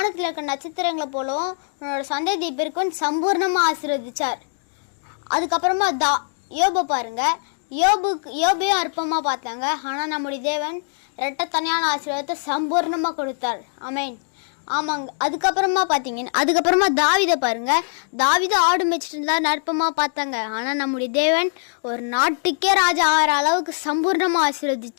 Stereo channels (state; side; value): silent; right; digital silence